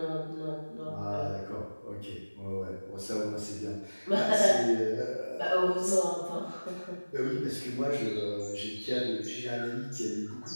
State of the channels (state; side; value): inverted; both; correlation -1.00